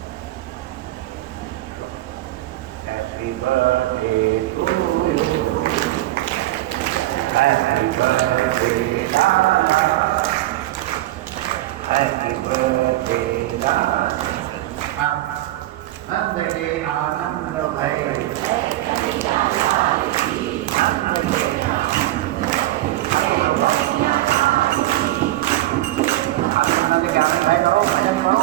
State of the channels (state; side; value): quieter; left; 16.4 dB